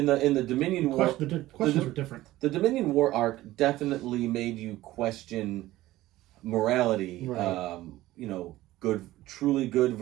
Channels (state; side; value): quieter; left; 16.4 dB